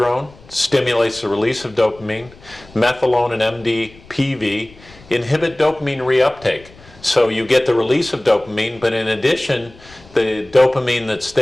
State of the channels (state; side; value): noise; left; rumble, 24 dB below the sound